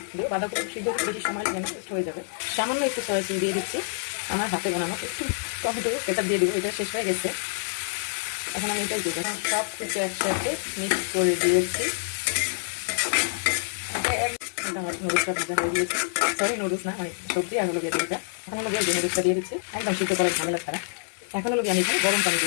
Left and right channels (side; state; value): right; silent; 60 dB below the other